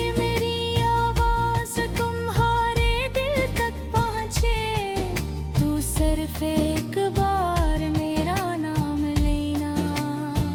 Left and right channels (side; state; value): both; identical; correlation 1.00